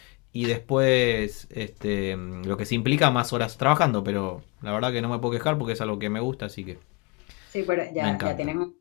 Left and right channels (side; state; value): right; quieter; 27.4 dB